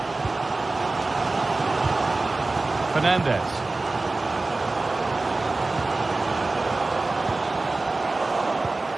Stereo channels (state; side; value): quieter; left; 3.3 dB